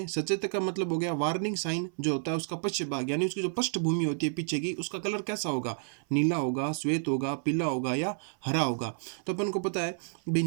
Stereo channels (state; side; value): silent; left; 58 dB below the other